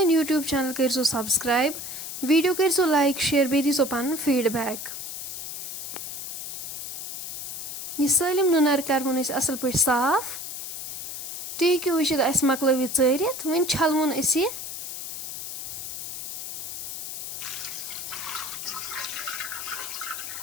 यूट्यूब चैनल करो सब्सक्राइब वीडियो करो लाइक शेयर बे दीजो पन फीडबैक यह सलम नुनर करवन असल पे साफ तुम हेको वुचित अस मकलव चारित वन छलवन यह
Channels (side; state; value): left; noise; hiss, 7 dB below the sound